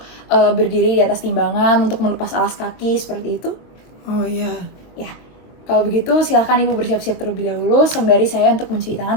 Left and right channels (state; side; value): late; right; 22 ms